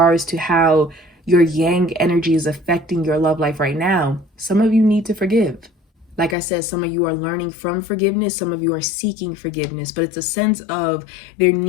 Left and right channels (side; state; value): right; drops out; at 6.4 s